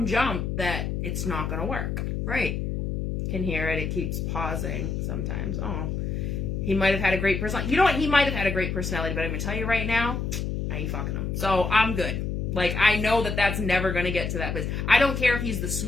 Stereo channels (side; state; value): left; noise; hum, 2 dB below the sound